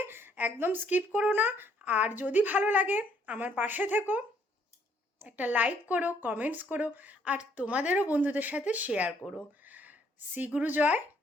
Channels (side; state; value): both; normal; correlation 0.67